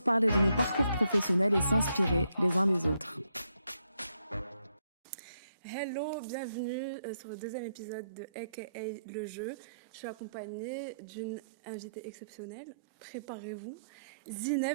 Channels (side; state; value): both; inverted; correlation -0.78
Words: parler de nos parcours professionnels et s'inspirer les uns des autres. Hello, bienvenue sur le deuxième épisode de AKA le jeu. Je suis accompagnée d'une invitée exceptionnelle. Préparez-vous.